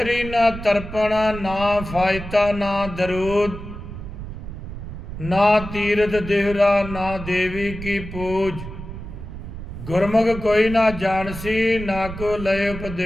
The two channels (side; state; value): right; noise; rumble, 10 dB below the sound